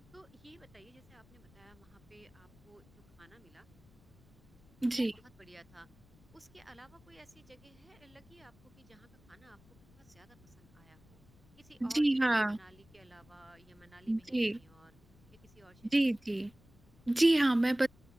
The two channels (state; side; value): noise; left; rumble, 27 dB below the sound